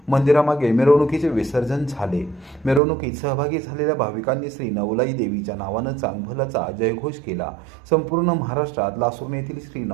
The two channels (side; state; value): left; drops out; at 2.8 s